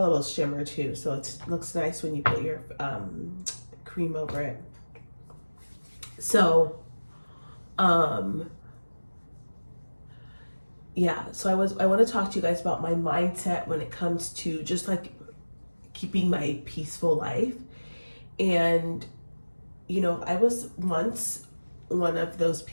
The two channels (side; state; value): both; inverted; correlation -1.00